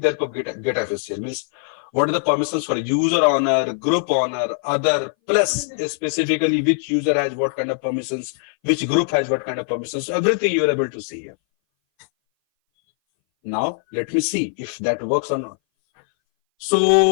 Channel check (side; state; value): right; silent; 60 dB below the other